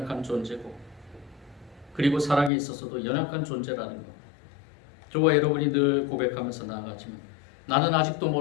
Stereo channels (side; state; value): right; drops out; at 2.5 s